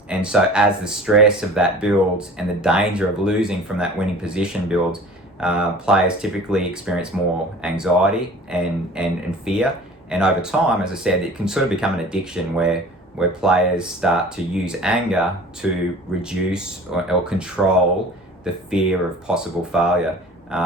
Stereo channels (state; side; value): normal; both; correlation 0.43